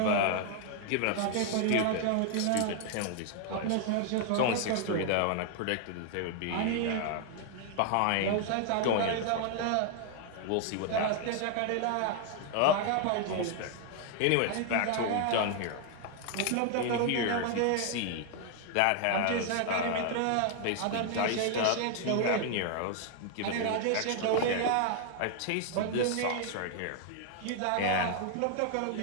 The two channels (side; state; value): both; different; correlation 0.00